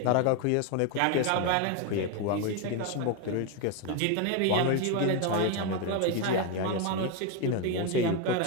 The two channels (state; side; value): different; both; correlation 0.02